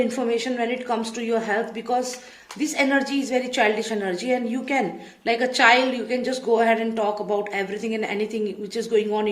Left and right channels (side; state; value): both; identical; correlation 1.00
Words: when it comes to your health, because this energy is very childish energy, and you can, like a child, you can just go ahead and talk about everything and anything which is going on